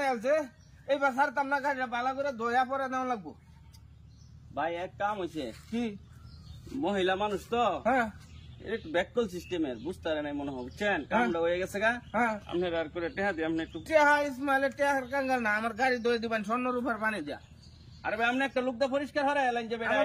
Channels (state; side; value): identical; both; correlation 1.00